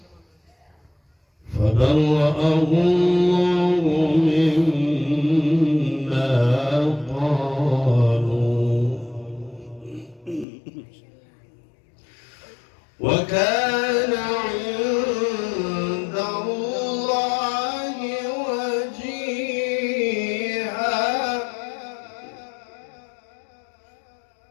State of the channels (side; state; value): right; drops out; at 10.5 s